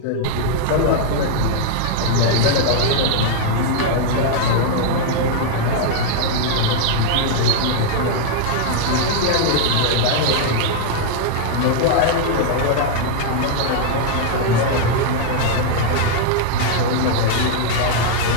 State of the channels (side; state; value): both; different; correlation -0.01